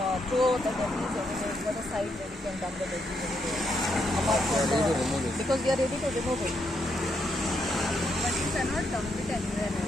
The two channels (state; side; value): normal; both; correlation 0.78